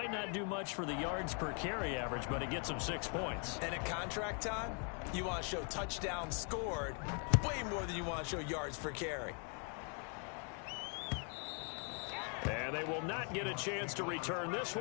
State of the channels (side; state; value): right; quieter; 39.2 dB